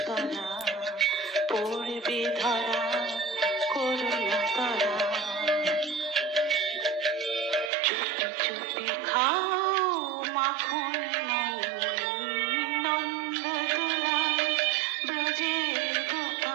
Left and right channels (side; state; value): left; drops out; at 7.7 s